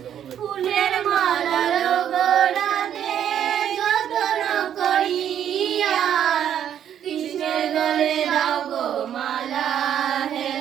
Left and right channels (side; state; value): left; quieter; 9.7 dB